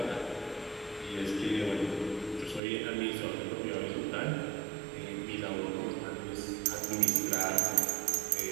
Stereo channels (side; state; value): left; drops out; at 2.6 s